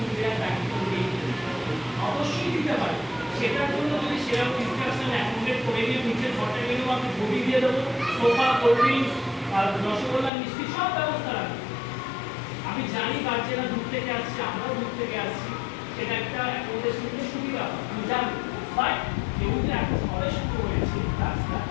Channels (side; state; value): right; drops out; at 10.3 s